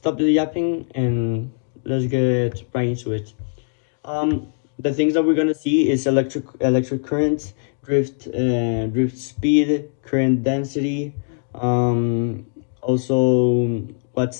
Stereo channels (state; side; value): silent; right; digital silence